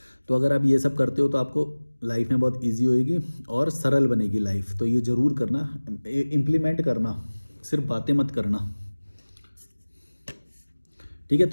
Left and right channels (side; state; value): both; inverted; correlation -1.00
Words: तो अगर आप ये सब करते हो तो आपको लाइफ में बहुत ईजी होएगी और सरल बनेगी लाइफ। तो ये ज़रूर करना, इम्प्लीमेंट करना, सिर्फ बातें मत करना। ठीक है,